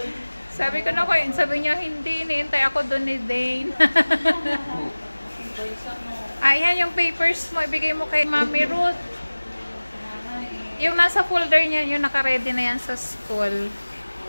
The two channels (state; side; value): inverted; both; correlation -1.00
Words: Sabi ko na ko, sabi niya hindi. Hinihintay ako dun ni Dane. Ayan yung papers mo. Ibigay mo kay Mami Ruth. Yung nasa folder niya, yung naka-ready na yan sa school.